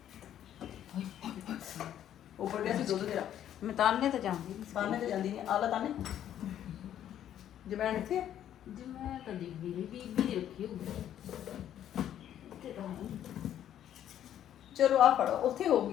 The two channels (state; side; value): quieter; right; 10.8 dB